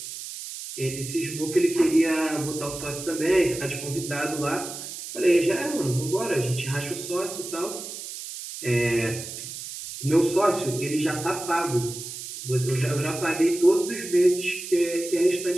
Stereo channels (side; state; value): right; noise; hiss, 9 dB below the sound